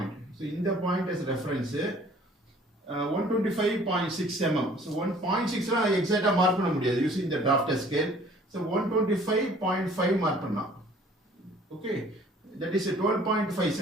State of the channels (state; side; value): normal; both; correlation 0.54